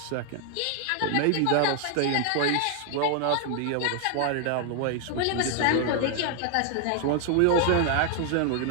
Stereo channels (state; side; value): different; both; correlation 0.00